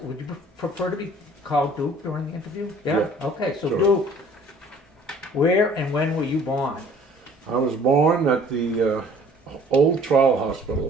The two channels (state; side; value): normal; both; correlation 0.53